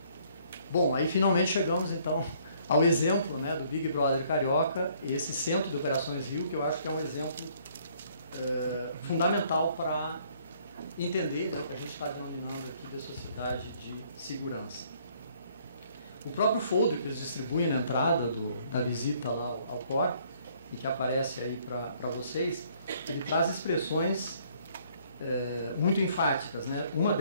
Bom, aí finalmente chegamos então ao exemplo, né, do Big Brother Carioca, esse Centro de Operações Rio, que eu acho que é um exemplo fundamental para entender, né, o que a gente está denominando aqui de sociedade de segurança. O próprio folder que eles distribuem na entrada da visita lá ao COR, e que aparece aí para vocês, ele traz expressões muito enfáticas. Né? Uma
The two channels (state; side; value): inverted; both; correlation -0.63